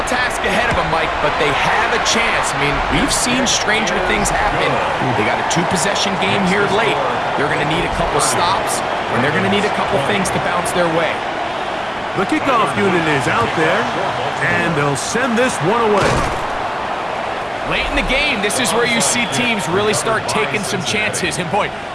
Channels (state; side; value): identical; both; correlation 1.00